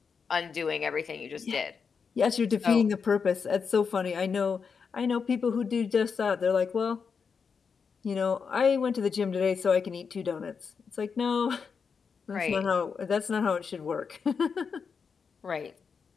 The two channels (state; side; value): quieter; right; 5.9 dB